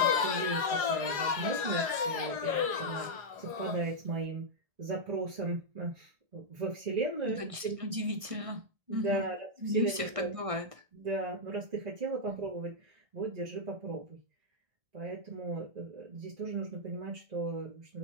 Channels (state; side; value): late; left; 1.6 ms